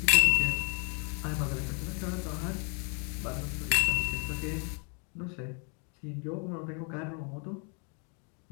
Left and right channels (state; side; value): quieter; right; 38.2 dB